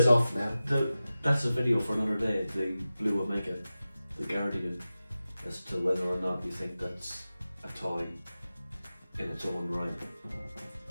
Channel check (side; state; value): both; inverted; correlation -0.94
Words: off now. That's a video for another day, the Blue Omega, the Guardian, as to whether or not you think that's a toy in its own right